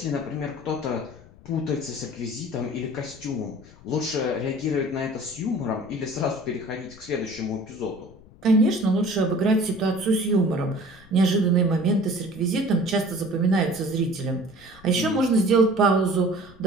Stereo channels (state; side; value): noise; left; rumble, 23 dB below the sound